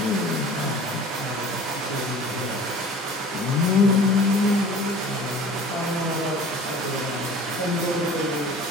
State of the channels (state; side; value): normal; both; correlation 0.44